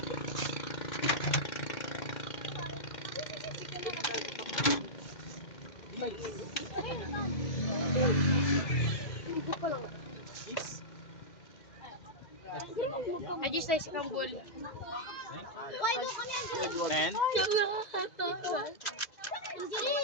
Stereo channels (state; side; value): late; right; 2.2 ms